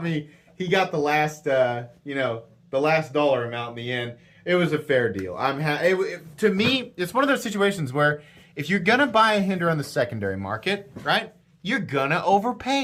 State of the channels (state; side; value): identical; both; correlation 1.00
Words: me. He got the last the last dollar amount in the end. It was a fair deal. To me, it's one of those situations where if you're gonna buy a Hinderer on the secondary market, right, you're gonna